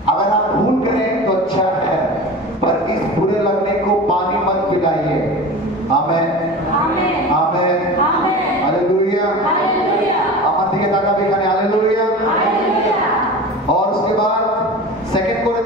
अगर आप भूल करें तो अच्छा है, पर इस बुरे लगने को पानी मत पिलाइए। आमेन, आमेन, हालेलुया, আমার দিকে তাকাবে এখানে, हालेलुया। और उसके बाद सेकंड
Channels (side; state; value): both; normal; correlation 0.33